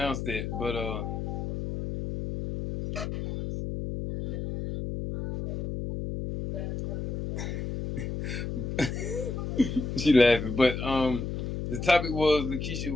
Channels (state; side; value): noise; left; hum, 4 dB below the sound